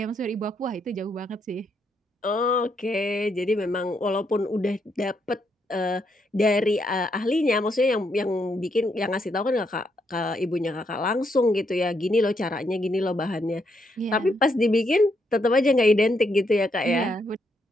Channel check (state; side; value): normal; both; correlation 0.77